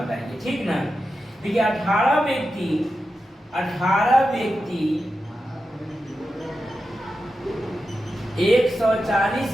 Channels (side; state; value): both; normal; correlation 0.90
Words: ठीक ना? देखिए 18 व्यक्ति 140